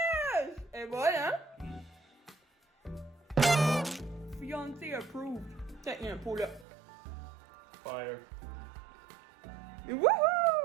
Et voilà! Fiancé approved. Tiens, il y a un pot là. Fire.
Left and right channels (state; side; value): drops out; left; at 6.7 s